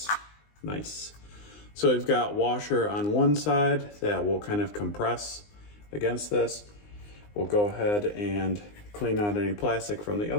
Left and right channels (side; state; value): right; late; 19 ms